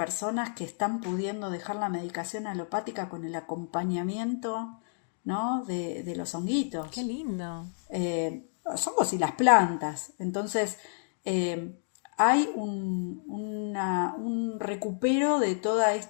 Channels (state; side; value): silent; right; digital silence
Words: que están pudiendo dejar la medicación alopática con el acompañamiento, ¿no? de los Qué honguitos, lindo. los hongos y las plantas. Entonces, eh, hay un recupero de toda